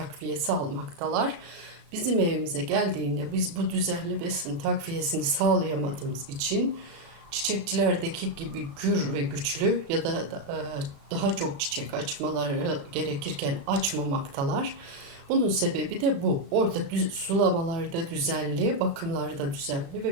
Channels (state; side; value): late; left; 36 ms